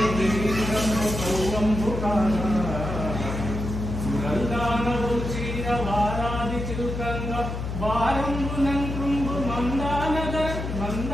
गिरीन्द्रंडु कौवंबुकागा सुरल्दानवु चीर वारादि चिल्कंग वारंबुनंकृंबु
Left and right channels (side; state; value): left; noise; hum, 5 dB below the sound